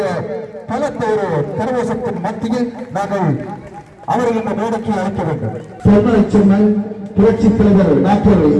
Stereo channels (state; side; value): identical; both; correlation 1.00